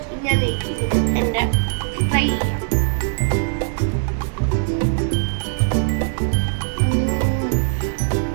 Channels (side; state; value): left; silent; 62 dB below the other